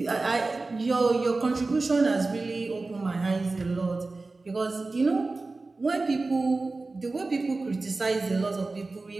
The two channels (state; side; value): quieter; left; 3.5 dB